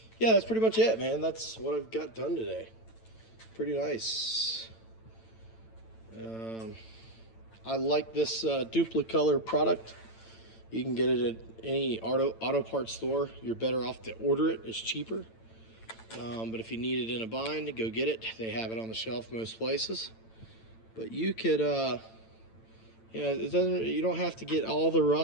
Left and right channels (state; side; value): late; right; 9.0 ms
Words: Yeah, that's pretty much it, man. That's what I've got done today. Pretty nice. I like this duplicolor product. You can get it at any auto parts store. You're better off to order it. It's cheaper. But if you need it in a bind, go get it. They have it on the shelf most places. But you could, you don't have to get all the